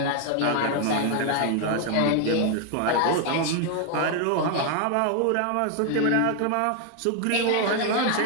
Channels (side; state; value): both; different; correlation 0.00